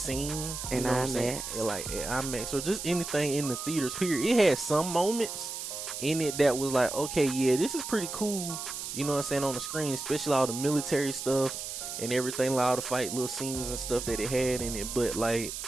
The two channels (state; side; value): noise; right; hiss, 6 dB below the sound